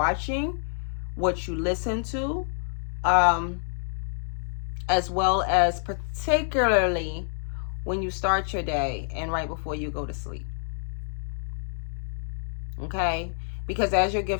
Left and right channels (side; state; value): right; silent; digital silence